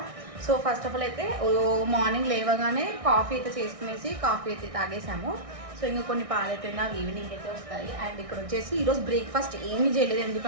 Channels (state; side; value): late; left; 1.6 ms